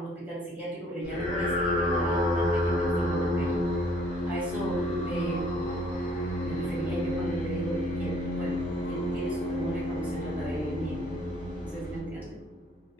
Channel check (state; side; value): normal; both; correlation 0.61